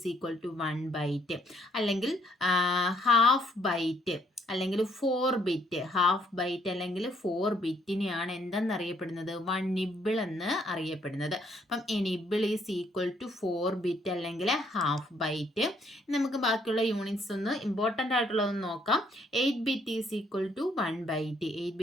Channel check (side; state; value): both; normal; correlation 0.68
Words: equal to 1 byte. അല്ലെങ്കിൽ ഹാഫ് ബൈറ്റ് അല്ലെങ്കിൽ 4 ബിറ്റ്, ഹാഫ് ബൈറ്റ് അല്ലെങ്കിൽ 4 ബിറ്റിനെയാണ് എന്തെന്നറിയപ്പെടുന്നത്? 1 നിബിൾ എന്ന് അറിയപ്പെടുന്നത്. അപ്പം a nibble is equal to 4 bit അല്ലെങ്കിൽ ഹാഫ് ബൈറ്റ്. നമുക്ക് ബാക്കിയുള്ള യൂണിറ്റ്സ് ഒന്ന് ഇമ്പോർട്ടൻ്റ് ആയിട്ടുള്ളതൊന്ന് നോക്കാം. 8 bit is equal to 1 byte. 8